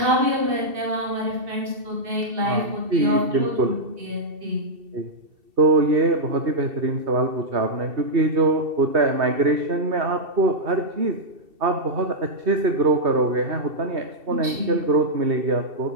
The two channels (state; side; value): late; left; 2.7 ms